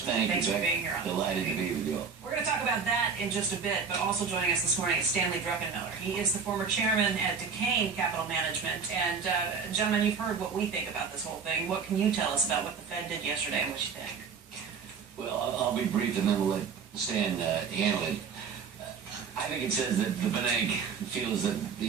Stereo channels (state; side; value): quieter; left; 5.9 dB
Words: Thanks for being here. Delighted to be with you all. We're going to talk about that in just a bit, but also joining us this morning is Stanley Druckenmiller. He is the former chairman at Duquesne Capital Management. And gentlemen, you've heard what we think about this whole thing. What can you tell us about what the Fed did yesterday and what you think? Well, I'll be brief and then we'll let Stan handle it. I think it says that the bank feels that